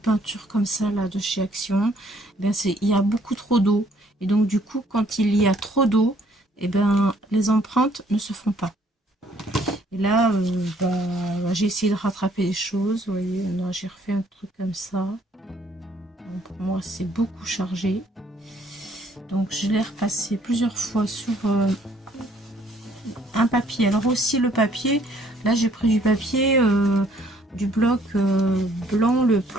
peintures comme ça, là, de chez Action, il y a beaucoup trop d'eau. Et donc, du coup, quand il y a trop d'eau, les empreintes ne se font pas. Et là, j'ai essayé de rattraper les choses. Vous voyez, j'ai refait un truc comme ça. Donc, pour moi, c'est beaucoup chargé. Donc, je l'ai repassé plusieurs fois sur un papier. Alors aussi, le papier, là, j'ai pris du papier, du bloc blanc le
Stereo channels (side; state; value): both; normal; correlation 0.63